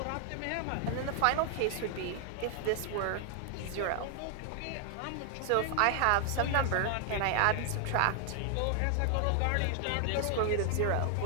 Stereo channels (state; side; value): different; both; correlation 0.00